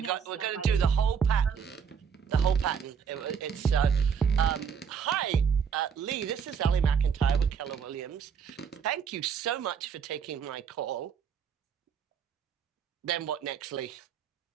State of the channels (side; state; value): left; quieter; 6.9 dB